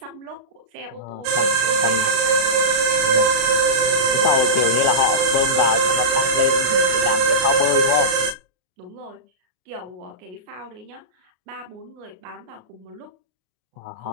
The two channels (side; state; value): left; late; 33 ms